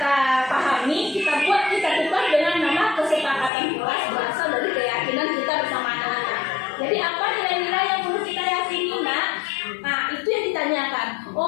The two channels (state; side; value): drops out; right; at 3.5 s